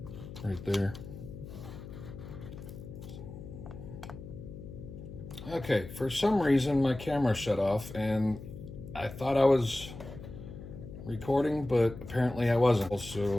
right there. Okay, for some reason my camera shut off and I thought I was recording, but apparently I wasn't.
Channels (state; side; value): noise; left; hum, 12 dB below the sound